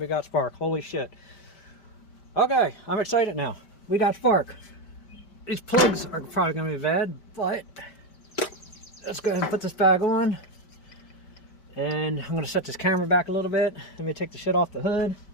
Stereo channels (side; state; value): right; late; 5.1 ms